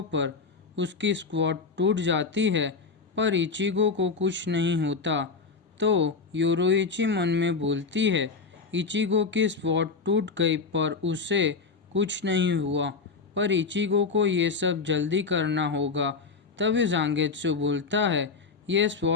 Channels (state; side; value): quieter; right; 4.7 dB